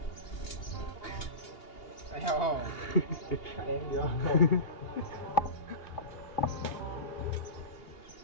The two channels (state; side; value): late; right; 2.8 ms